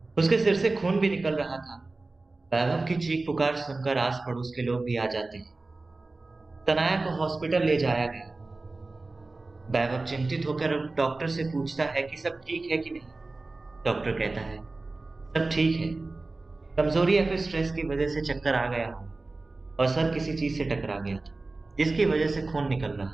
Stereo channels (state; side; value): quieter; left; 3.3 dB